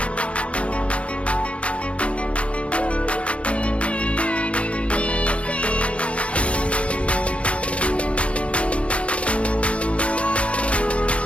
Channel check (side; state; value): right; late; 0.061 ms